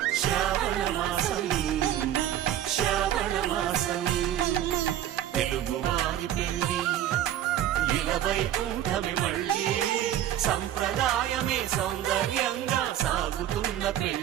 శ్రావణ మాసం శ్రావణ మాసం తెలుగు వారి పెళ్లి ఇలా వైకుంఠమే మళ్ళీ సంప్రదాయమే సౌందర్యంగా సాగుతున్న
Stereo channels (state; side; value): quieter; left; 11.7 dB